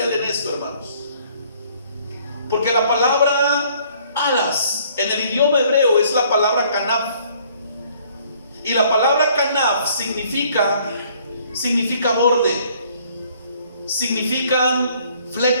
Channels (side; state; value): both; inverted; correlation -0.61